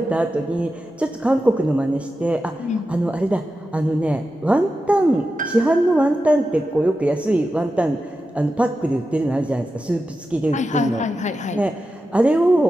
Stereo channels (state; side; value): normal; both; correlation 0.91